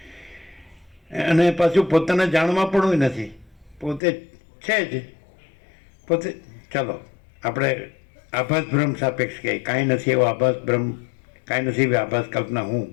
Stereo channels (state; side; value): drops out; right; at 4.0 s